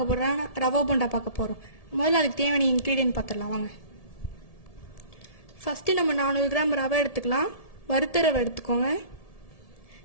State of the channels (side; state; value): right; late; 1.7 ms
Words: போறோம்னா ரவா போண்டா பார்க்க போறோம். முதல்ல அதுக்கு தேவையான இன்கிரிடியன்ட் பார்த்துடலாம் வாங்க. ஃபர்ஸ்ட் நம்ம 400 கிராம் ரவை எடுத்துக்கலாம். வறுத்த ரவை எடுத்துக்கோங்க.